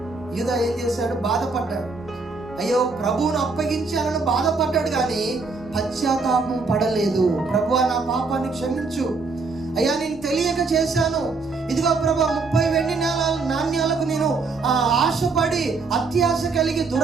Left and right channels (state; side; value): quieter; left; 4.1 dB